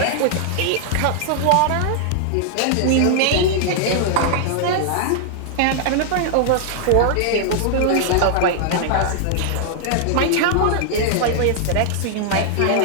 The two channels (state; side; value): different; both; correlation -0.01